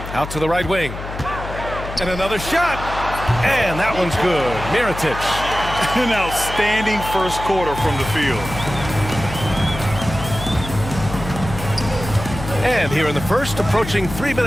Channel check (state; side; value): noise; left; hum, 9 dB below the sound